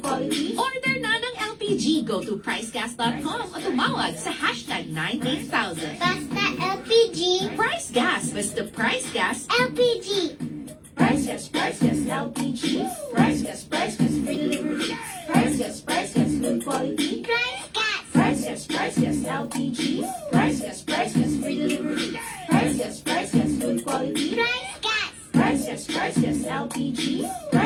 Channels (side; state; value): both; identical; correlation 1.00